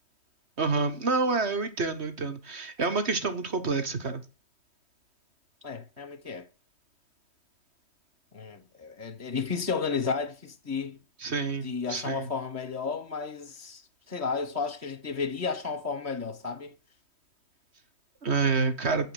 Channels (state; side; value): late; left; 3.1 ms